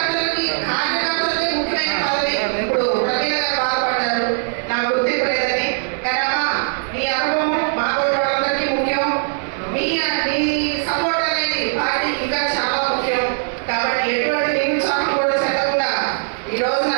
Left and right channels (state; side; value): silent; left; digital silence